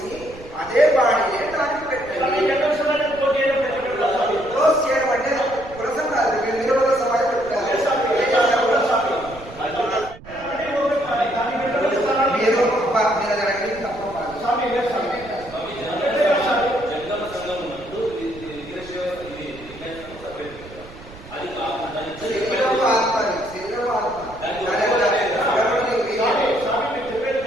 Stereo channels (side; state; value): right; noise; rumble, 18 dB below the sound